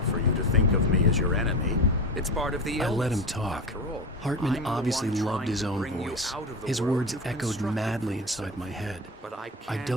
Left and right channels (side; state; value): both; normal; correlation 0.24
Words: for you to think of me as your enemy. It's part of the illness. I let him talk. After all, Hartman I'm the obviously one loved trying his to own bring you voice. out of the His world words you've echoed constructed madly for inside yourself. my head. But I I can't